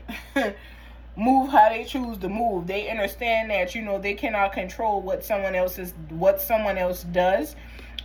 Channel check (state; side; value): identical; both; correlation 1.00